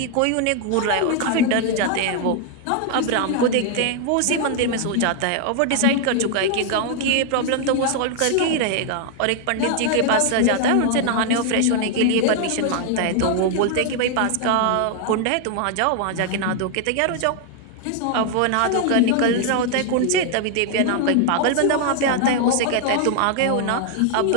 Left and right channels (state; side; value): different; both; correlation 0.00